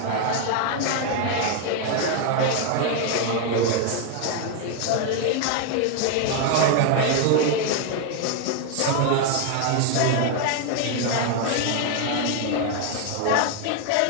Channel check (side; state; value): both; different; correlation 0.01